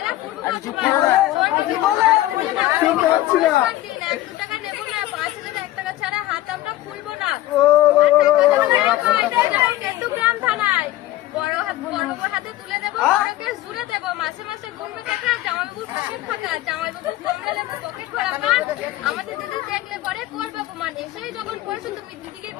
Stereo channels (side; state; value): right; quieter; 15.5 dB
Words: পূর্ব টাকা নেবো না, 5,000 টাকা ছাড়া হাত আমরা খুলবো না। কেতুগ্রাম থানায় বড় হাতে তুলে দেবো, বড়কে জুড়ে দেবো, মাসে মাসে গুনবে টাকা, জামাইবাবু পকেট ফাঁকা, জামাইবাবু কমলা লেবু পকেট ভরা পান, আমাদের দিদি দেখলে পরে করবো অপমান। এসেই যখন পড়ছো তুমি দিদিকে